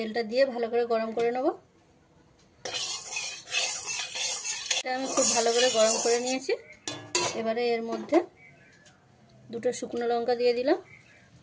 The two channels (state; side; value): identical; both; correlation 1.00